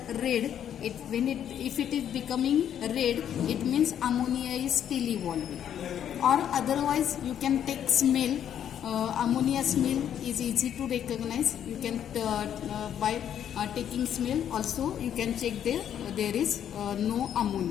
red, if it is becoming red, it means ammonia is still evolving. Or otherwise you can take smell. Ammonia smell is easy to recognize. You can by taking smell also you can check there is no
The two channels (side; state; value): right; quieter; 9.6 dB